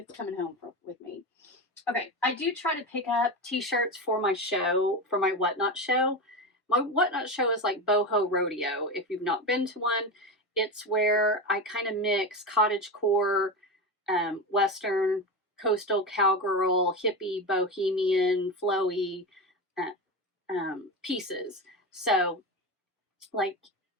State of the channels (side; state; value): both; normal; correlation 0.20